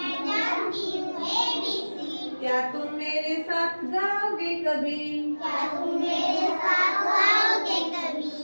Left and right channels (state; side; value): inverted; both; correlation -1.00